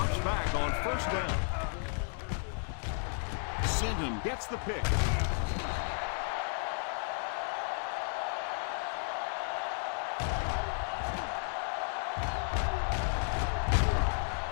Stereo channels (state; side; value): silent; right; 55 dB below the other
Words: back on first down. Sinton gets the pick.